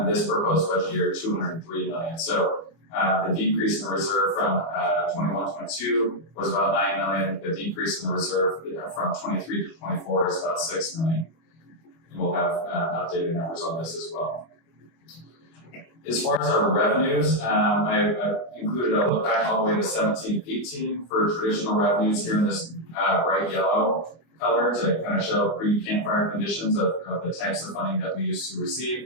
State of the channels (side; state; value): right; late; 25 ms